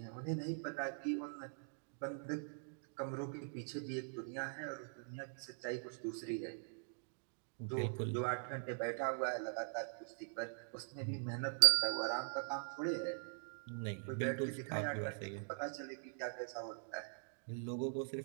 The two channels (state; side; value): silent; left; digital silence